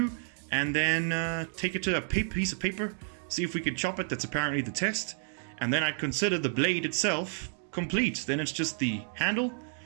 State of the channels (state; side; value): silent; left; 57 dB below the other